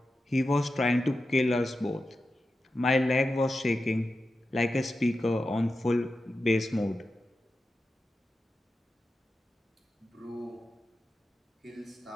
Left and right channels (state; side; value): normal; both; correlation 0.91